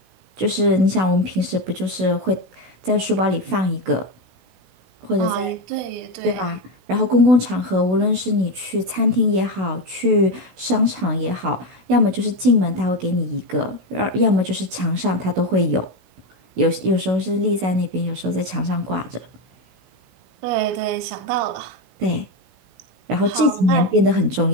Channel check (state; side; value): late; left; 16 ms